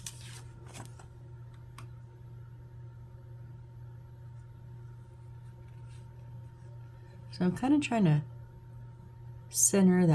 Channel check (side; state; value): both; identical; correlation 1.00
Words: So I'm kind of trying to center